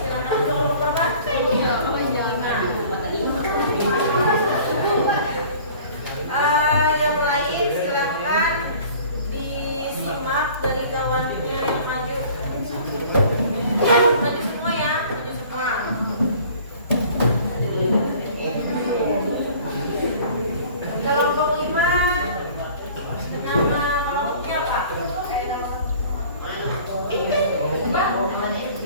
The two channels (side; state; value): both; inverted; correlation -0.48